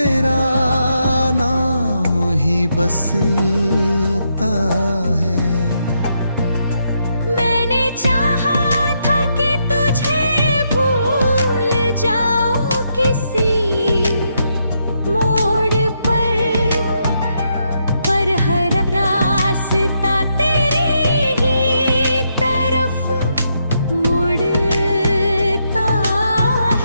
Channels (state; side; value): inverted; both; correlation -0.79